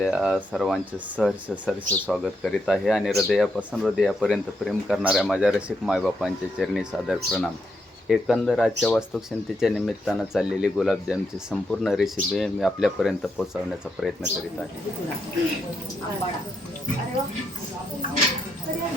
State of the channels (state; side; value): normal; both; correlation 0.80